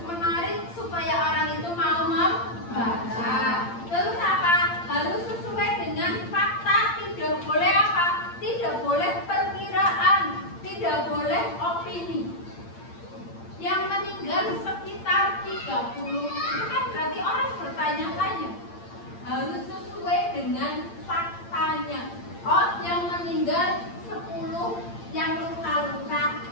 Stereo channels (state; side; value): late; right; 8.7 ms